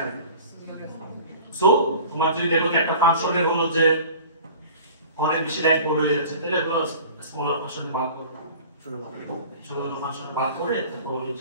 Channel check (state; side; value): inverted; both; correlation -0.42